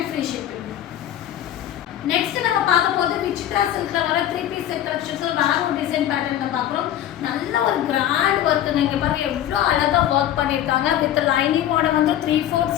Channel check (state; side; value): quieter; right; 11.7 dB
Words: ஃப்ரீ ஷிப்பிங். நெக்ஸ்ட் நம்ம பார்க்க போது விசித்ரா சில்க்ல வர 3 பீஸ் செட் கலெக்ஷன்ஸ் வேற ஒரு டிசைன் பேட்டர்ன்ல பார்க்குறோம். நல்ல ஒரு கிராண்ட் ஒர்க். நீங்க பாருங்க எவ்வளோ அழகா ஒர்க் பண்ணியிருக்காங்க. வித் லைனிங்கோட வந்து 3/4